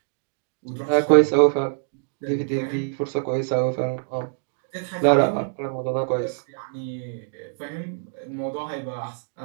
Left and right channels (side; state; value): left; silent; digital silence